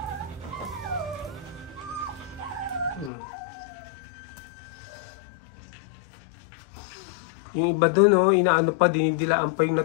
Yung iba dun, oh, inaano pa, dinidilaan pa yung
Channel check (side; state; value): right; drops out; at 3.1 s